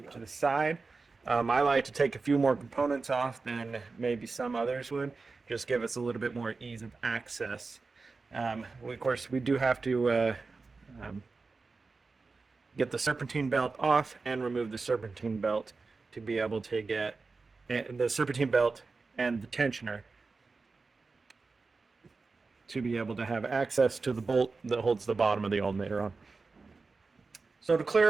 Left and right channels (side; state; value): left; quieter; 4.1 dB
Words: it to the side. I like to take a few more components off than maybe some others would, just give us a little bit more ease of access. Of course, we do have to get the serpentine belt off and remove the serpentine belt to be able to get the serpentine belt and the tensioner to be able to have access to the bolt that holds the bottom of the alternator on. So to